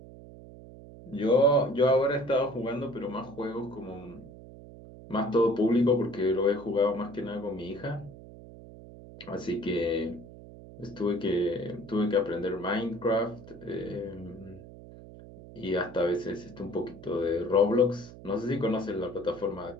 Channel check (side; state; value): right; noise; hum, 17 dB below the sound